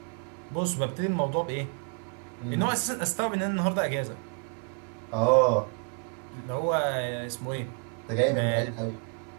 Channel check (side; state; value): left; quieter; 37.7 dB